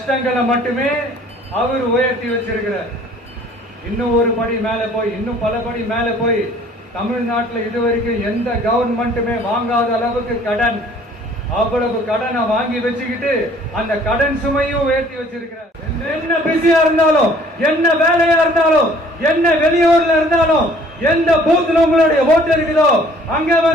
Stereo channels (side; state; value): both; normal; correlation 0.55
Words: மட்டுமே அவர் உயர்த்தி வச்சிருக்கிறார். இன்னும் ஒரு படி மேல போய், இன்னும் பல படி மேல போய், தமிழ்நாட்டில் இதுவரைக்கும் எந்த கவர்மெண்ட்டுமே வாங்காத அளவுக்கு கடன், அவ்வளவு கடனை வாங்கி வச்சுக்கிட்டு அந்த கடன் சுமையும் உயர்த்தி வச்சிருக்கிறார். என்ன பிஸியா இருந்தாலும், என்ன வேலையா இருந்தாலும், என்ன வெளியூர்ல இருந்தாலும், எந்த பூத்துல உங்களுடைய ஓட்டு இருக்குதோ அங்க